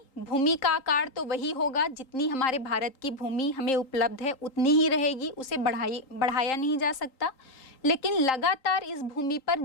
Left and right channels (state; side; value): late; right; 3.8 ms